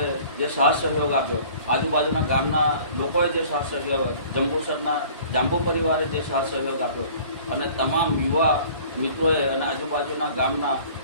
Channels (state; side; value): inverted; both; correlation -0.49